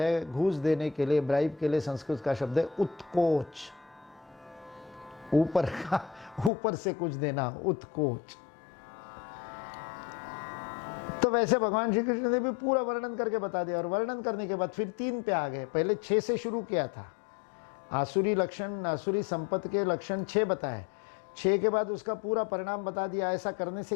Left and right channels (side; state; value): right; drops out; at 6.5 s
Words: घूस देने के लिए, ब्राइब के लिए संस्कृत का शब्द है उत्कोच, ऊपर से कुछ देना, उत्कोच। तो वैसे भगवान श्री कृष्ण ने भी पूरा वर्णन करके बता दिया। और वर्णन करने के बाद फिर 3 पे आ गए। पहले 6 से शुरू किया था, आसुरी लक्षण, आसुरी संपत्ति के लक्षण 6 बताए। 6 के बाद उसका पूरा परिणाम बता दिया, ऐसा करने